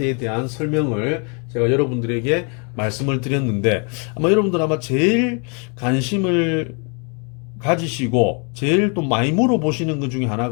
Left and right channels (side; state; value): right; quieter; 36.3 dB